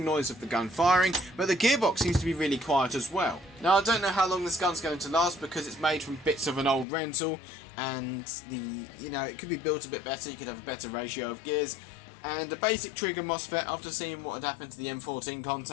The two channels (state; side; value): drops out; right; at 6.9 s